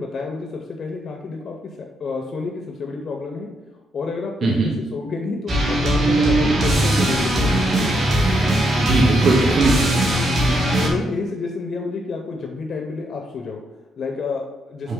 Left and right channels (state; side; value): normal; both; correlation 0.78